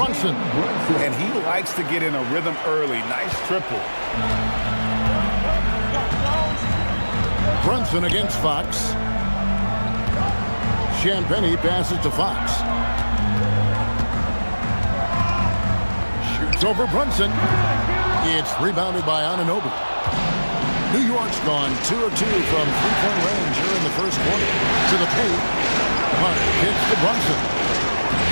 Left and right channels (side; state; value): both; inverted; correlation -1.00